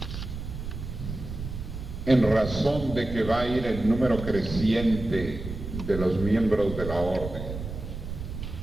en razón de que va a ir el número creciente de los miembros de la orden,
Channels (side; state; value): right; noise; rumble, 8 dB below the sound